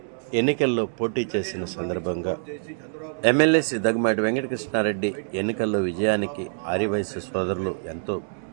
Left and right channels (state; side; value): silent; left; digital silence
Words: ఎన్నికల్లో పోటీ చేసిన సందర్భంగా ఎమ్మెల్యే శ్రీ దగ్గుమాటి వెంకటకృష్ణారెడ్డి ఎన్నికల్లో విజయానికి ఆర్యవైశ్య సోదరులు ఎంతో